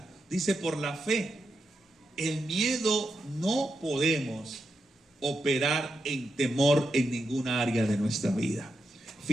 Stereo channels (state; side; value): normal; both; correlation 0.86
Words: Dice por la fe. El miedo no podemos operar en temor en ninguna área de nuestra vida.